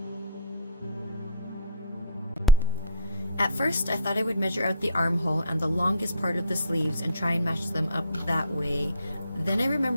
At first, I thought I would measure out the armhole and the longest part of the sleeves and try and match them up that way. Then I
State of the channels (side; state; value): both; inverted; correlation -0.50